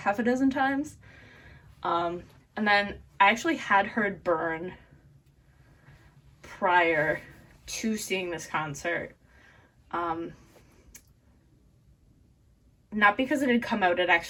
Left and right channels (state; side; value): identical; both; correlation 1.00